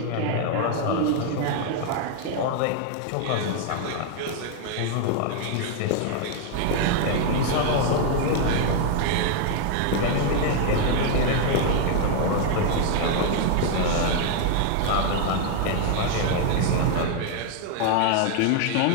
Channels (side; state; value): both; different; correlation 0.00